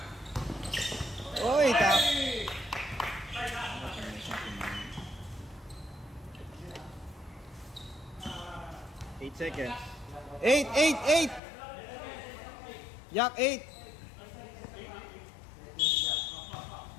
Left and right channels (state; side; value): drops out; right; at 11.4 s